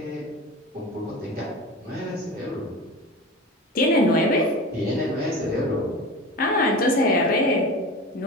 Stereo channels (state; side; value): normal; both; correlation 0.31